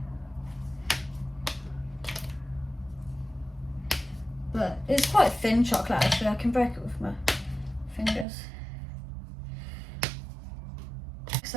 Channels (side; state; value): left; drops out; at 8.2 s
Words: But it's quite thin chocolate actually, I can break it with my fingers.